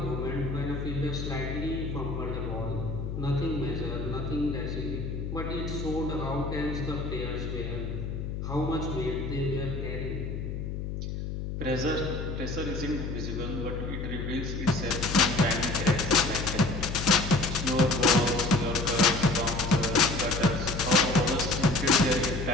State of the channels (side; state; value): left; noise; hum, 5 dB below the sound